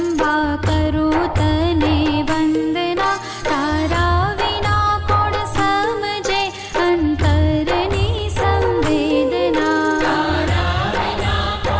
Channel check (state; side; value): identical; both; correlation 1.00